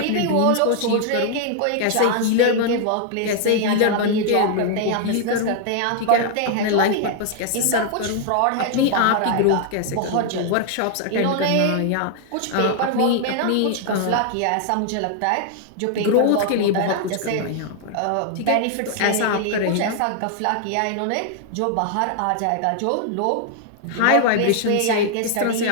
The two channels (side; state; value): both; different; correlation -0.01